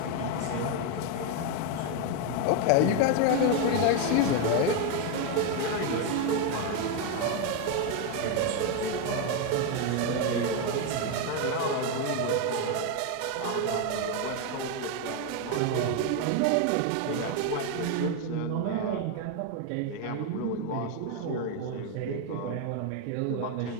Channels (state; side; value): different; both; correlation 0.01